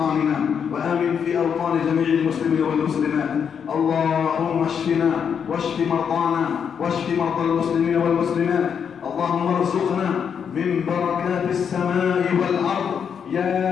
وآمن في أوطان جميع المسلمين والمسلمات. اللهم اشفنا واشف مرضانا واشف مرضى المسلمين والمسلمات. اللهم ارزقنا من بركات السماء والأرض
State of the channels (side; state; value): right; quieter; 7.3 dB